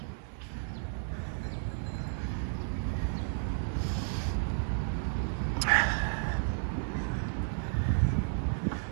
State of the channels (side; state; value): left; silent; 56 dB below the other